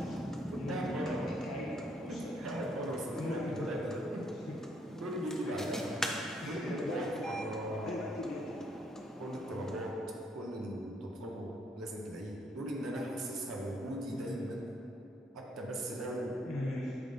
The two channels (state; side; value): normal; both; correlation 0.70